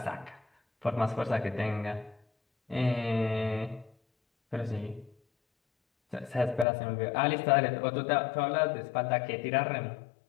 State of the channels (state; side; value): drops out; right; at 6.7 s